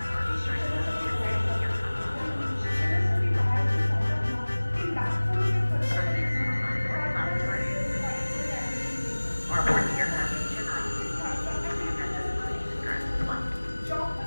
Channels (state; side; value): inverted; both; correlation -1.00